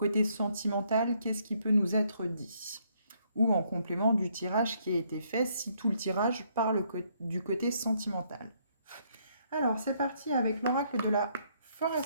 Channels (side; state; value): both; inverted; correlation -0.70